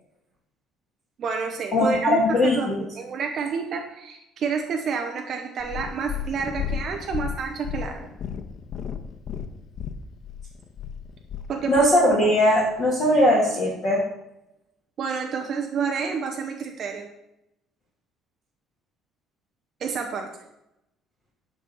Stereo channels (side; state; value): both; normal; correlation 0.58